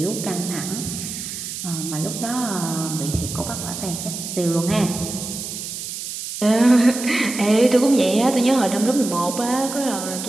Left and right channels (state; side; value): noise; right; hiss, 7 dB below the sound